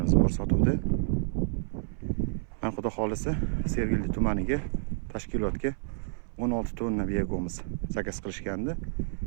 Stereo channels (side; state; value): left; silent; 58 dB below the other